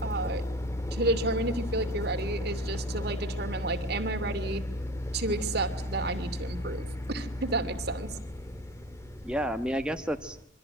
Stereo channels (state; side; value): normal; both; correlation 0.36